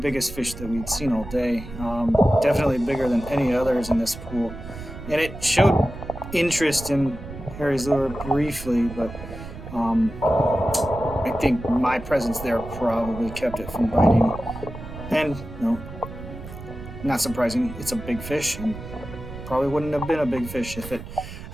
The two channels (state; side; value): noise; right; rumble, 12 dB below the sound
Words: fish that we'd seen all day. Definitely bigger than any others in this pool. And it showed interest in Harry's lure briefly, but I think my presence there probably kept it from biting. And, not surprising, it's a big fish, and probably wouldn't have been a big fish if it